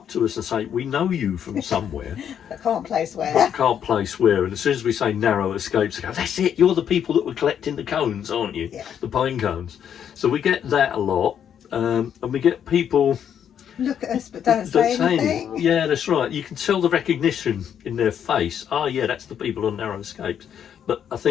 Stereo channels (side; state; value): right; quieter; 8.8 dB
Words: to us and say, we know you from somewhere. I can't place where. But can't place where. And as soon as we say narrow escapes, they go, that's it, you're the people that were collecting the cones, aren't you? Yeah. The pine cones. So we get that a lot. And we get people look at us but don't say anything. Yeah, that's right. You can tell the recognition in their face. Oh yeah, that's the people on narrow escapes. But I